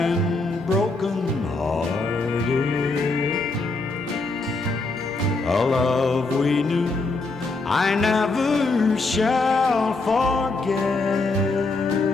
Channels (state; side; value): quieter; right; 3.5 dB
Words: broken-hearted. A love we knew I never shall forget.